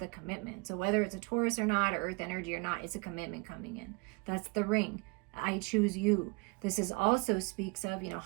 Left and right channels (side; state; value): left; quieter; 29.3 dB